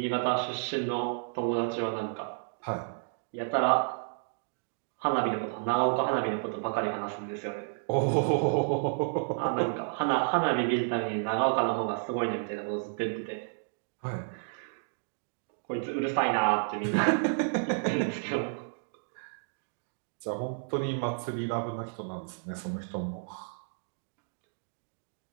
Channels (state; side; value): silent; left; digital silence